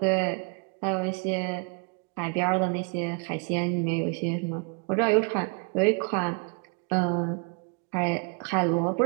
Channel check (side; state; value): left; quieter; 35.9 dB